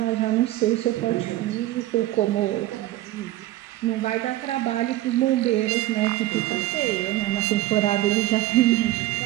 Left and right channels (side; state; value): left; quieter; 15.6 dB